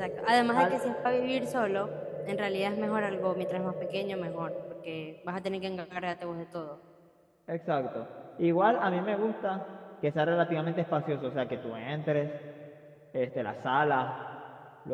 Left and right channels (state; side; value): identical; both; correlation 1.00